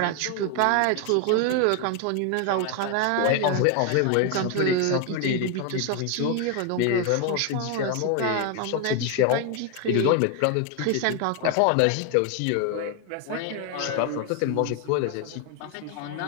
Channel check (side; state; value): both; different; correlation 0.01